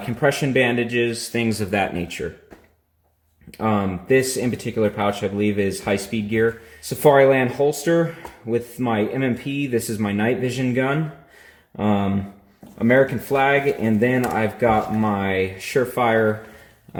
bandages, things of that nature. This in particular pouch, I believe, is high-speed gear. Safariland holster with my MMP. This is my night vision gun. American flag, and then I've got my Surefire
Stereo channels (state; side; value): identical; both; correlation 1.00